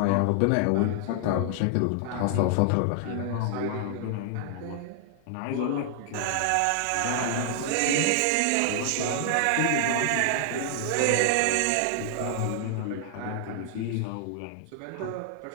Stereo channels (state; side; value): different; both; correlation 0.00